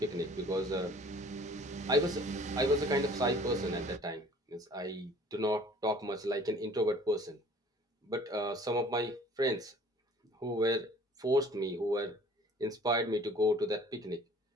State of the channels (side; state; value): both; normal; correlation 0.52